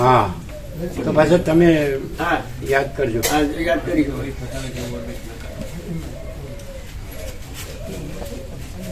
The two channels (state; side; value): identical; both; correlation 1.00